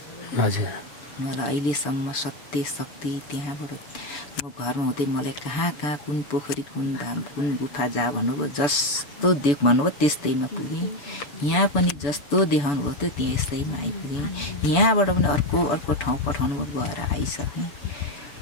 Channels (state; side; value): late; right; 6.9 ms